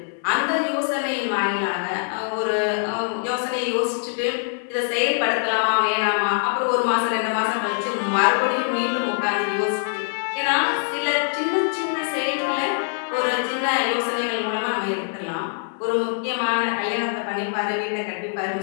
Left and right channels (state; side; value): silent; right; 63 dB below the other